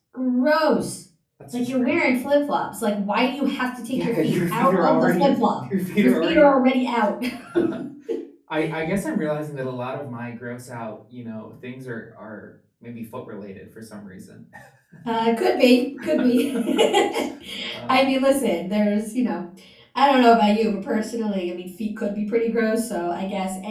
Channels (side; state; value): both; identical; correlation 1.00